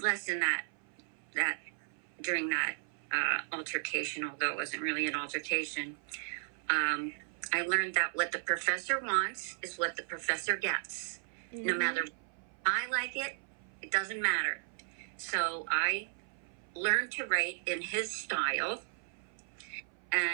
lesson that during that altercation, although it wasn't really an altercation. I learned that what the professor wants is what the professor gets. Mm-hmm. No matter I like it, it doesn't matter. So I learned to write in his style,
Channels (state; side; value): silent; left; 54 dB below the other